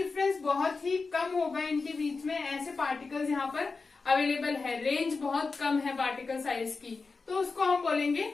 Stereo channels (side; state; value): right; quieter; 4.3 dB